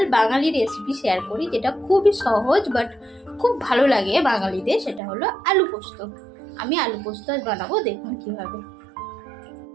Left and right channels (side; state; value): left; drops out; at 5.0 s